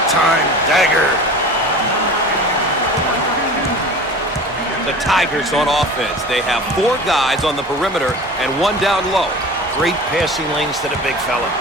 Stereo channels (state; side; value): normal; both; correlation 0.37